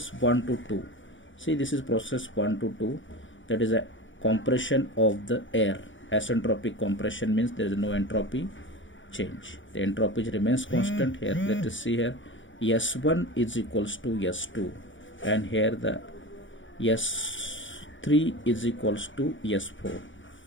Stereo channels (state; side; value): late; right; 0.56 ms